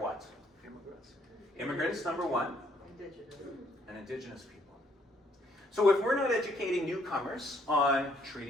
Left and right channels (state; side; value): normal; both; correlation 0.68